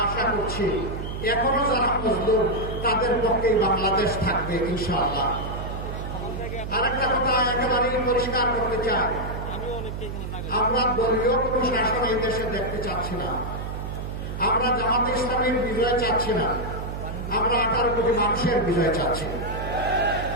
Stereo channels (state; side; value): noise; right; hum, 6 dB below the sound